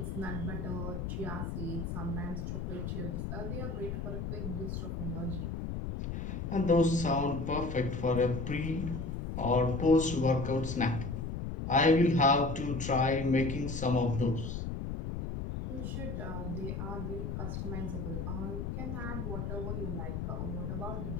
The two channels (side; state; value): left; noise; rumble, 4 dB below the sound